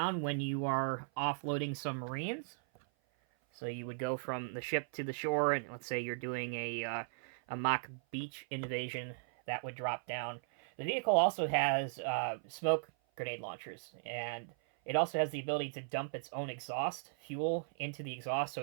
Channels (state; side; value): silent; left; 53 dB below the other